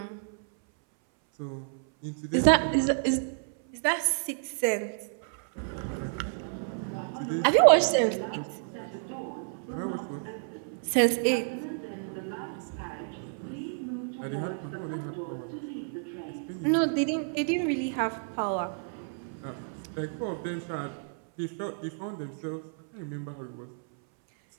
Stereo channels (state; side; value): silent; left; 58 dB below the other